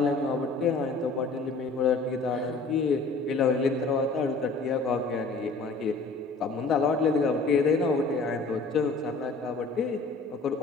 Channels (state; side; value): quieter; right; 3.7 dB